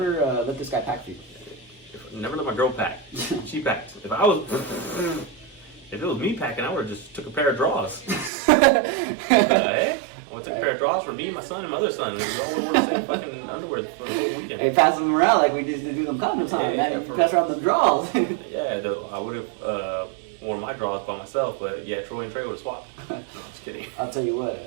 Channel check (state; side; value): drops out; left; at 8.3 s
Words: let this guy pack for you. Never let my girl pack. She packed. If it was me packing, I would have just took a pair of drawers. Heck? I would have took a pair of drawers for me, my son, and my other son. We all would wear the same fucking underwear for the whole weekend. Hey, pass them around like we just did do them condoms, huh? Yeah, you pass around the drawers. I would have worn my drawers by myself, but yeah, Troy and Trey would have swapped. No, I'm just kidding. I'll tell you what.